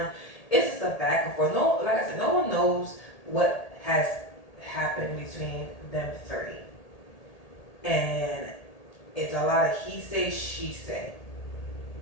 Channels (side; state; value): right; late; 1.8 ms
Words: It's just a back and forth. No, like I said, no one knows what has happened between them 3, and it's a lot of he say, she say.